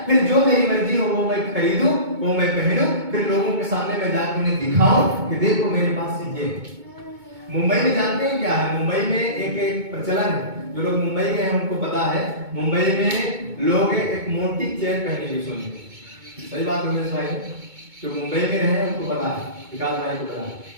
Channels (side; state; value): left; late; 2.2 ms